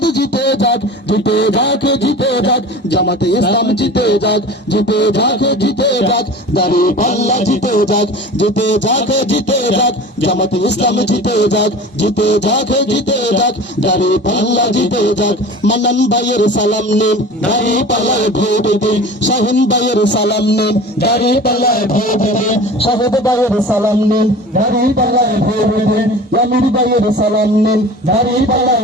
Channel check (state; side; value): normal; both; correlation 0.38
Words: জিতে যাক জিতে যাক জিতে যাক জামাতে ইসলাম জিতে যাক জিতে যাক জিতে যাক দাঁড়িপাল্লা জিতে যাক জিতে যাক জিতে যাক জামাতে ইসলাম জিতে যাক জিতে যাক জিতে যাক দাঁড়িপাল্লা জিতে যাক মান্নান ভাইয়ের সালাম নিন দাঁড়িপাল্লায় ভোট দিন শাহিন ভাইয়ের সালাম নিন দাঁড়িপাল্লায় ভোট দিন শাহেদ ভাইয়ের সালাম নিন দাঁড়িপাল্লায় ভোট দিন আমির ভাইয়ের সালাম নিন